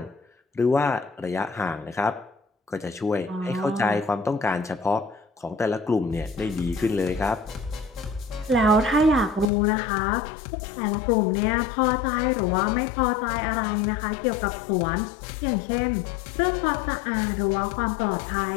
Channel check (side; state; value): right; drops out; at 9.5 s